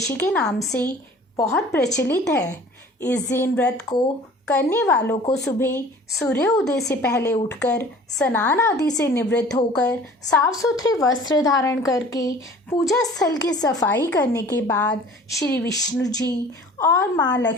के नाम से बहुत प्रचलित है। इस दिन व्रत को करने वालों को सुबह सूर्योदय से पहले उठकर स्नान आदि से निवृत्त होकर साफ सुथरे वस्त्र धारण करके पूजा स्थल की सफाई करने के बाद श्री विष्णु जी और माँ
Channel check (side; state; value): both; normal; correlation 0.47